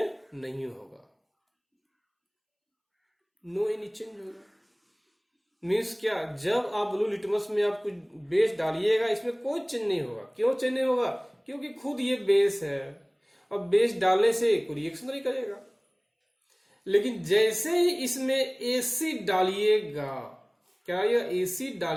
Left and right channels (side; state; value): both; identical; correlation 1.00